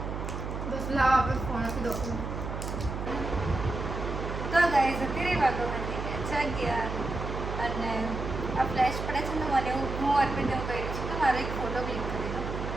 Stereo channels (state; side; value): noise; right; hum, 5 dB below the sound